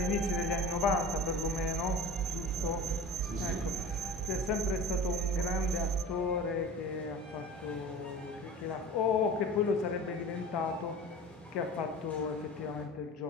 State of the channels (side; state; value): both; normal; correlation 0.36